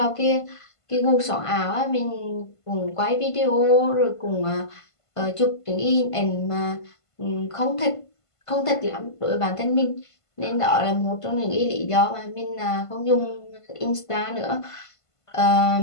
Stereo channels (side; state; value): right; late; 1.5 ms